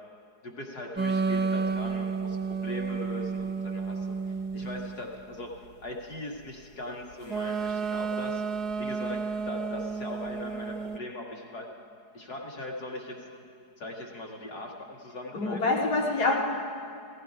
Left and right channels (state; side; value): late; right; 4.8 ms